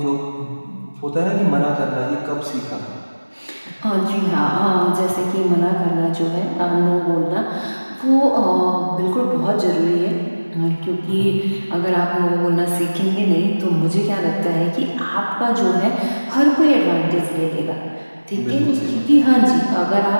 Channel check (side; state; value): both; inverted; correlation -1.00